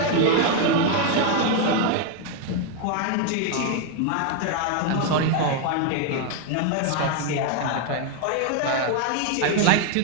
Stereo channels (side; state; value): both; different; correlation 0.01